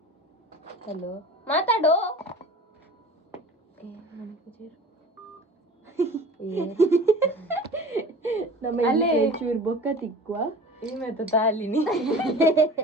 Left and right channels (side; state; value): both; normal; correlation 0.39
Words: ಹಲೋ ಮಾತಾಡು ನಮ್ಮ ಚೂರು ಬೊಕ್ಕ ತಿಕ್ಕುವ ಇವತ್ತು ತಾಲಿನಿ